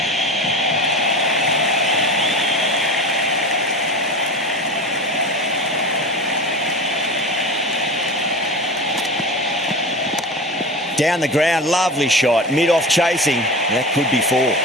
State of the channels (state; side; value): normal; both; correlation 0.30